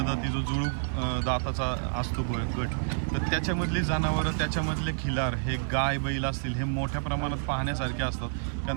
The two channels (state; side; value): silent; left; digital silence